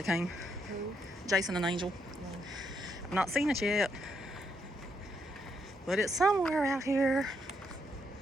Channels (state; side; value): normal; both; correlation 0.76